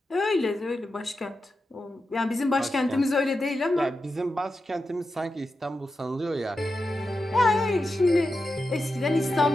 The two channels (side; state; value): both; normal; correlation 0.89